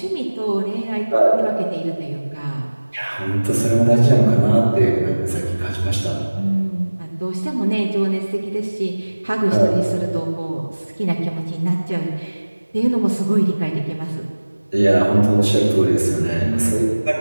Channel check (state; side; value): inverted; both; correlation -1.00